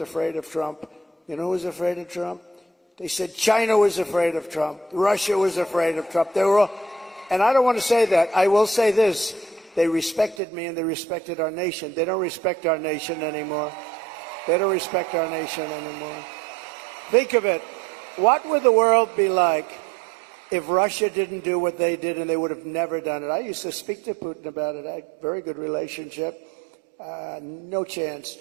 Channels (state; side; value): drops out; left; at 10.4 s